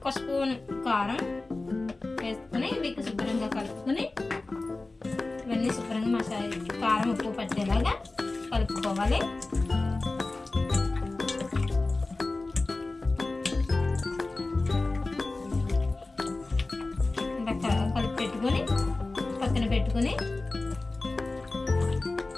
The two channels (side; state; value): right; quieter; 3.2 dB